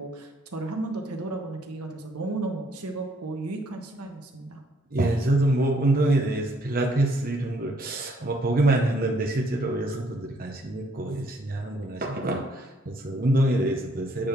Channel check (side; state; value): both; normal; correlation 0.67